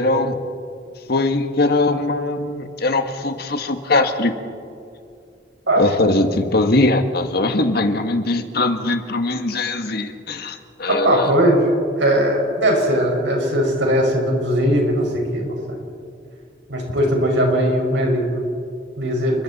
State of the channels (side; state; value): both; normal; correlation 0.30